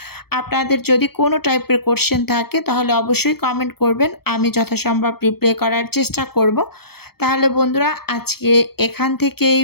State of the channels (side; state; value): right; late; 0.96 ms